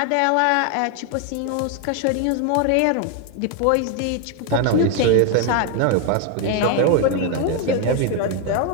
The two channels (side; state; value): both; different; correlation 0.01